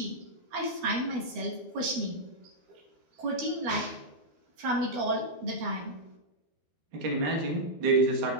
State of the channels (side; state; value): left; late; 12 ms